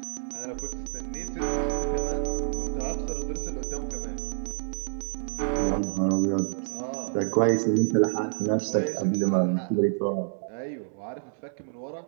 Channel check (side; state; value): left; silent; 59 dB below the other